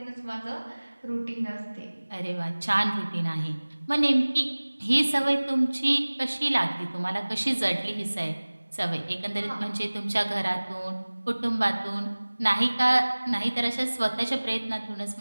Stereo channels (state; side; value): inverted; both; correlation -1.00